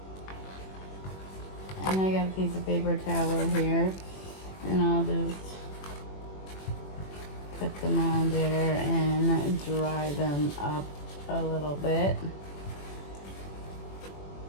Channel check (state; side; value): late; right; 21 ms